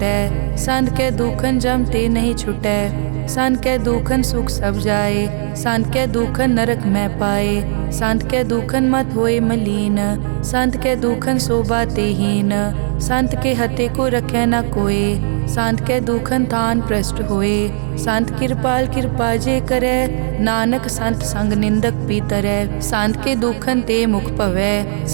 संत के दुखन जम ते नहीं छुटै। संत के दुखन सुख सब जाए, संत के दुखन नरक में पाए। संत के दुखन मत होए मलीन, संत के दुखन शोभा तेहीन। संत के हते को रखे न कोय, संत के दुखन थान प्रष्ट होए। संत कृपाल कृपा जे करे, नानक संत संग निंदक भी तरै। संत के दुखन ते मुख पवै,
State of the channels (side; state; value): left; silent; digital silence